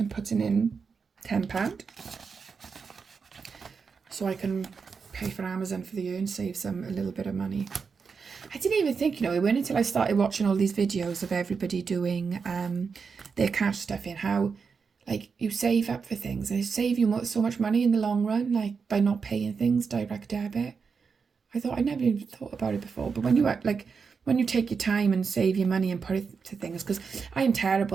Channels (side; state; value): left; quieter; 5.5 dB